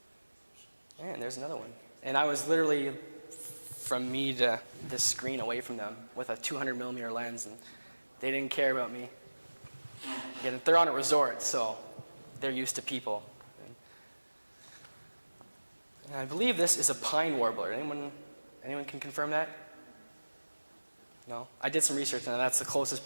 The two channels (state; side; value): inverted; both; correlation -1.00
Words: And there's another one. And I was literally from me to this screen away from them with a 200 millimeter lens, and they didn't care about me. Again, they're on a resort, so they're used to people. And I believe this is a pine warbler. Anyone can confirm that? No? I did some research, and that's the closest